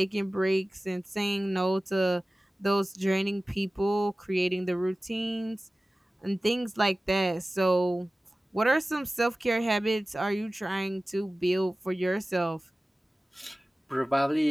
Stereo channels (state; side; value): normal; both; correlation 0.97